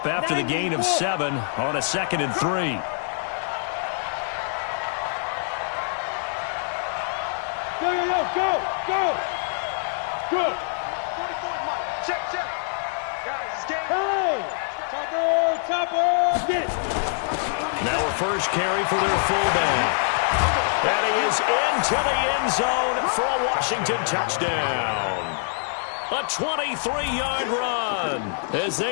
after the gain of 7 on a 2nd and 3. Go. Good. 44 Mike. Check. Guys, it's game. Hey! Topper. Get it. Now a first carry for their fullback. And he is into the end zone for a Washington touchdown. A 23-yard run, as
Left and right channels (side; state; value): right; silent; digital silence